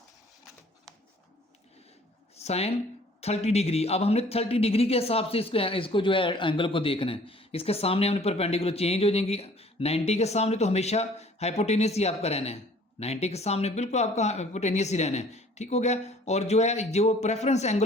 साइन 30 डिग्री, अब हमने 30 डिग्री के हिसाब से इसको जो है एंगल को देखना है। इसके सामने हमने परपेंडिकुलर चेंज हो जाएंगी, 90 के सामने तो हमेशा हाइपोटेनस ही आपका रहना है, 90 के सामने बिल्कुल आपका हाइपोटेनस ही रहना है। ठीक हो गया। और जो है जो प्रेफरेंस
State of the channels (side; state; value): both; normal; correlation 0.54